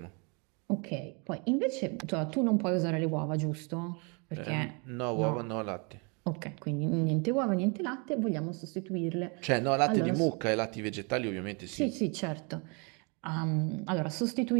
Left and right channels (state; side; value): quieter; left; 33.2 dB